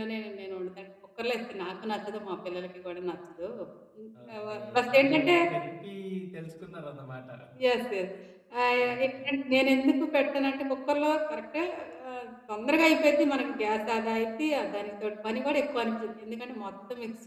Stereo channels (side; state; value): both; identical; correlation 1.00